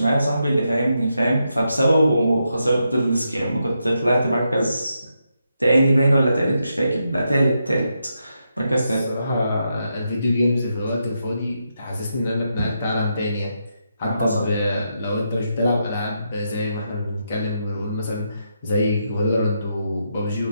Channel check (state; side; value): inverted; both; correlation -0.83